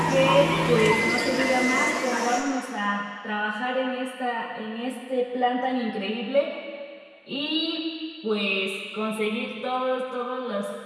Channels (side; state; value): both; identical; correlation 1.00